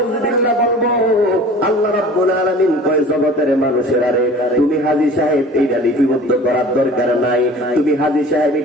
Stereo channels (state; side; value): normal; both; correlation 0.43